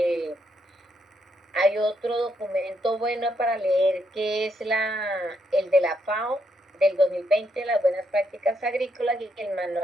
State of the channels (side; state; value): both; normal; correlation 0.77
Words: Hay otro documento bueno para leer que es el de la FAO del 2020, las buenas prácticas agrícolas, y el